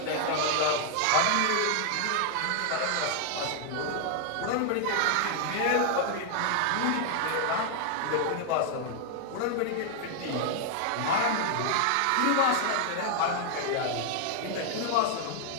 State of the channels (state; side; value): different; both; correlation 0.00